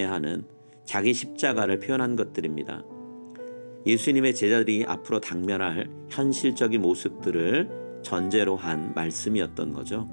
하는 자기 십자가를 표현한 것들입니다. 예수님의 제자들이 앞으로 당면할 현실적인 모습들을 전제로 한 말씀이었던 거죠.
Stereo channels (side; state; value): both; inverted; correlation -1.00